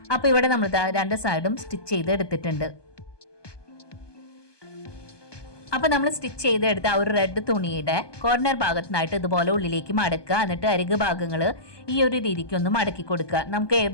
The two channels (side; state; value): right; late; 1.2 ms